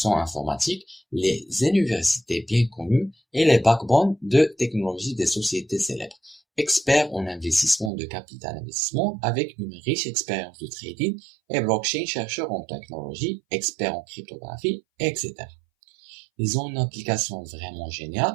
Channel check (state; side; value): drops out; left; at 7.9 s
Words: informatique, les universités bien connues et les backbones de technologie des sociétés célèbres. Experts en investissement de capital investissement avec une riche expérience de trading et blockchain, chercheurs en technologie, experts en cryptographie, etc. Ils ont une application vraiment géniale.